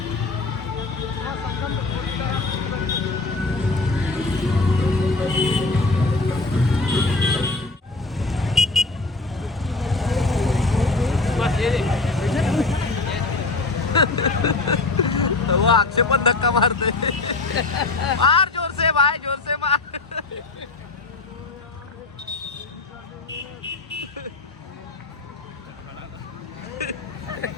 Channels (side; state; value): right; quieter; 3.4 dB